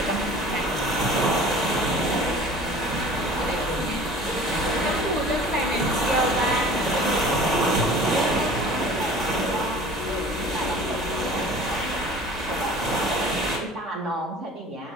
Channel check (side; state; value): both; normal; correlation 0.44